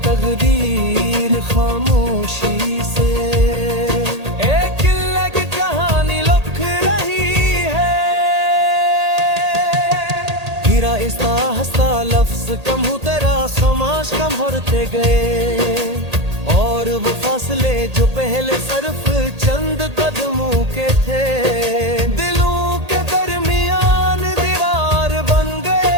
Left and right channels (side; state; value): left; late; 1.8 ms